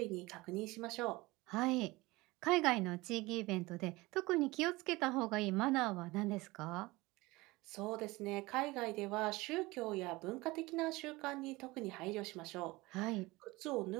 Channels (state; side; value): quieter; left; 21.4 dB